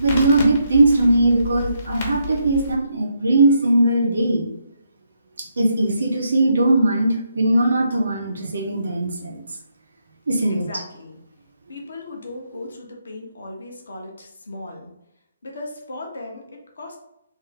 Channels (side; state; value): both; inverted; correlation -0.77